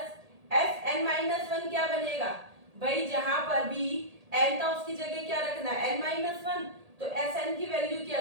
Sn minus 1 क्या बनेगा भाई, जहां पर भी n था उसकी जगह क्या रखना है n माइनस 1। तो Sn की वैल्यू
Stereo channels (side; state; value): left; late; 1.8 ms